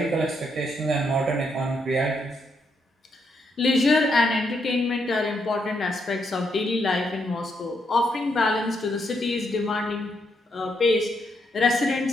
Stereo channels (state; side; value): normal; both; correlation 0.78